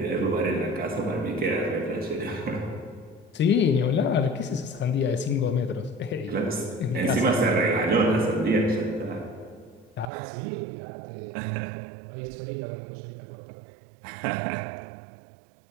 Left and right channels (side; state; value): left; drops out; at 10.1 s